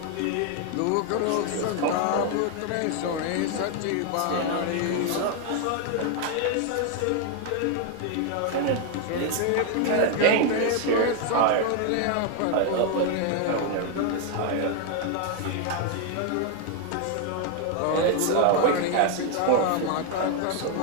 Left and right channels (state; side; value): different; both; correlation 0.00